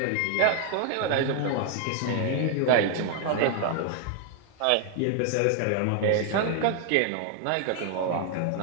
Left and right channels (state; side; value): different; both; correlation 0.00